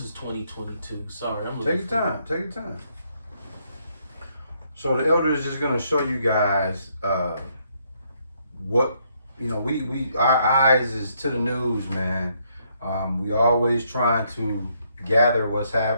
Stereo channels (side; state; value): both; inverted; correlation -0.72